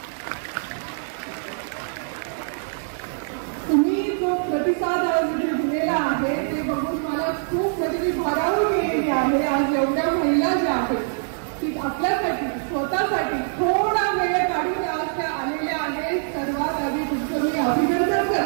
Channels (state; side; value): silent; left; digital silence